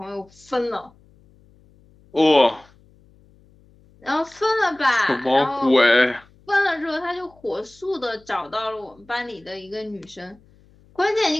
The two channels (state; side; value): noise; left; hum, 29 dB below the sound